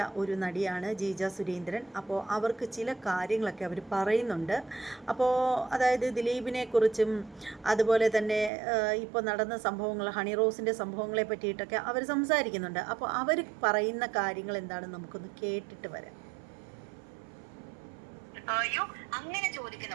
ഒരു നടിയാണ് ജീജ സുരേന്ദ്രൻ. അപ്പോൾ അവർക്ക് ചില കാര്യങ്ങളൊക്കെ അവർ പറയുന്നുണ്ട്. അപ്പോൾ അതായത് ദിലീപിനെക്കുറിച്ചും അതുപോലെ തന്നെ ഇപ്പോൾ നടന്ന സംഭവങ്ങൾ, ഹണി റോസിൻ്റെ സംഭവങ്ങളെ പറ്റിയിട്ടൊക്കെ അവർ സംസാരിക്കുന്നുണ്ട്. അപ്പോൾ അവർ പറയുന്ന കാര്യങ്ങൾ എന്താണെന്ന് നമുക്കൊന്ന് കേട്ടിട്ട് വരാം. അയ്യോ, അങ്ങനെ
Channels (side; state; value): left; drops out; at 8.5 s